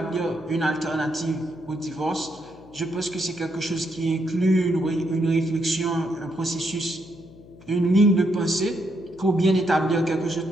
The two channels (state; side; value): noise; left; hum, 21 dB below the sound